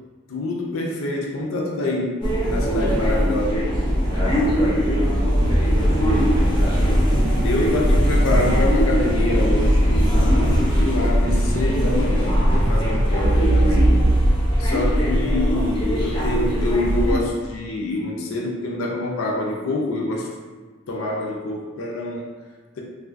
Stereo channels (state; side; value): normal; both; correlation 0.78